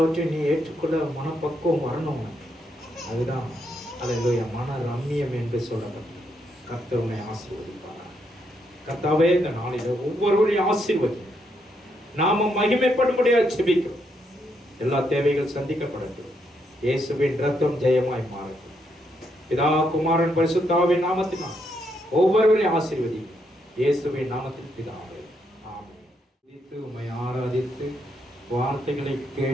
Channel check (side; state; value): both; normal; correlation 0.77